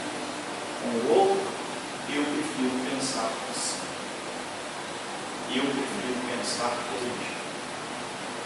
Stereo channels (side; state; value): both; identical; correlation 1.00